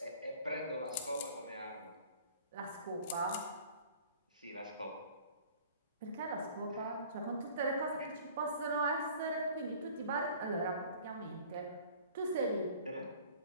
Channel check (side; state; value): both; inverted; correlation -0.48